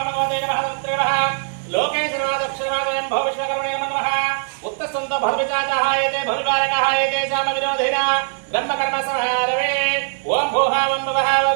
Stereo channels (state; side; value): silent; left; digital silence